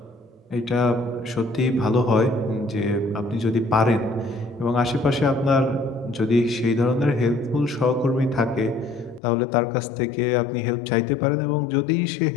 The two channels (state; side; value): drops out; right; at 9.2 s